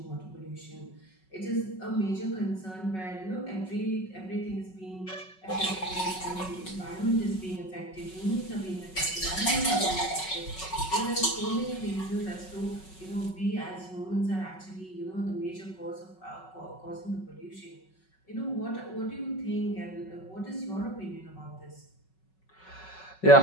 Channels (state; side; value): late; right; 5.4 ms